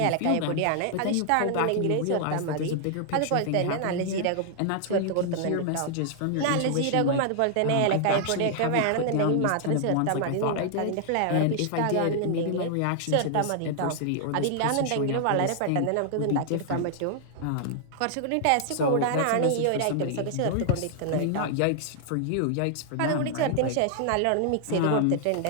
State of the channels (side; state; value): both; different; correlation -0.01